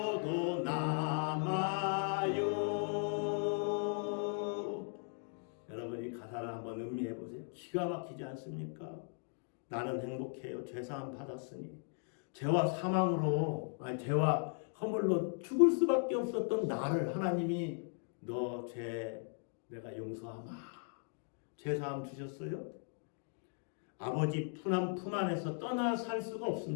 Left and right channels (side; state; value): right; silent; 53 dB below the other